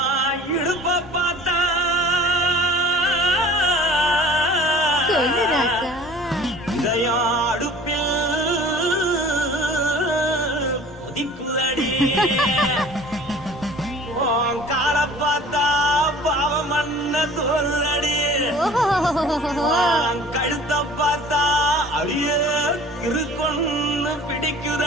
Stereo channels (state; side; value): normal; both; correlation 0.47